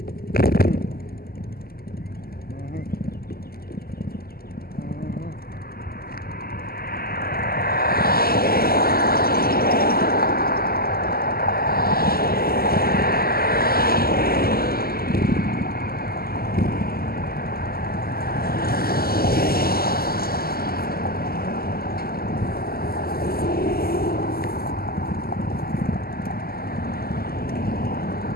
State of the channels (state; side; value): late; right; 0.44 ms